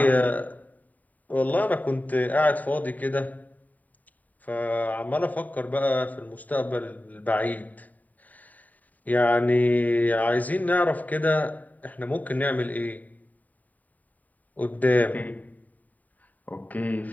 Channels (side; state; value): right; late; 0.077 ms